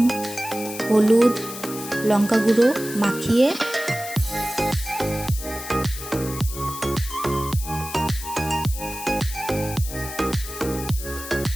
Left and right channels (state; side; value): noise; left; hiss, 10 dB below the sound